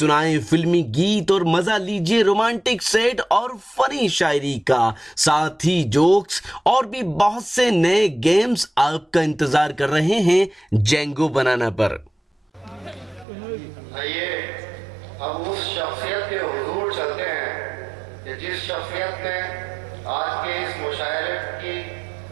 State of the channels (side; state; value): left; drops out; at 13.2 s